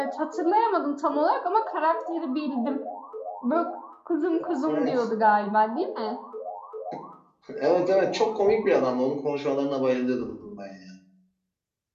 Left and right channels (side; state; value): both; identical; correlation 1.00